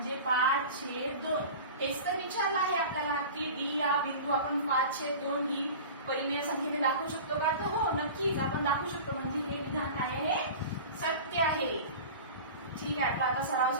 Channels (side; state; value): both; inverted; correlation -0.35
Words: 5/2. हेच तर विचारलं आहे आपल्याला की डी या बिंदू आपण 5/2 ही परिमेय संख्येने दाखवू शकतो का? तर हो, नक्कीच आपण दाखवू शकतो. म्हणजे हे विधान काय आहे? सत्य आहे. ठीक आहे, आपला आता सराव